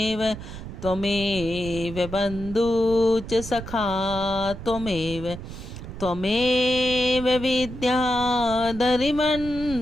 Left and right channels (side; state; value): right; noise; rumble, 11 dB below the sound